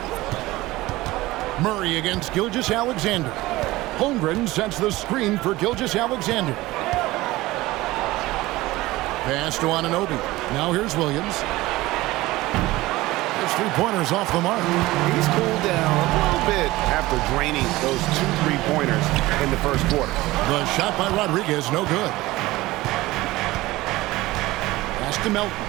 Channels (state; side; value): quieter; left; 18.7 dB